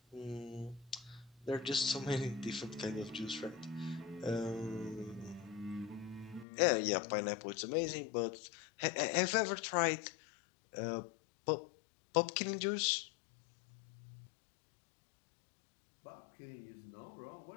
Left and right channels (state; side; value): drops out; right; at 6.5 s